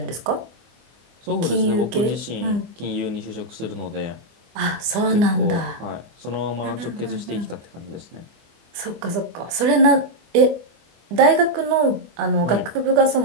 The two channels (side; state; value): left; late; 24 ms